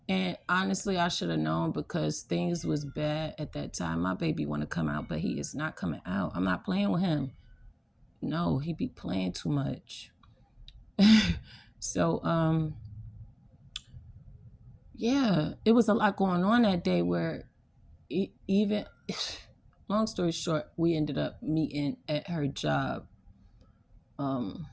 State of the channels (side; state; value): both; identical; correlation 1.00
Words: And honestly, I should have known because things was bad at that time. My baby want to come out, but he is not coming out. I'm not playing with him. No, he be playing too much. So, yeah, it was a lot going on that day where even, long story short, we ended up meeting at her job. 5